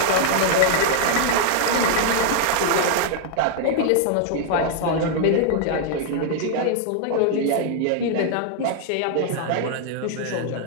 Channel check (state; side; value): different; both; correlation 0.00